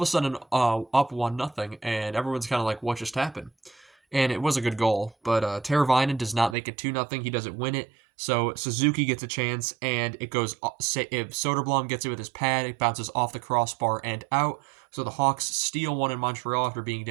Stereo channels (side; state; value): left; drops out; at 6.6 s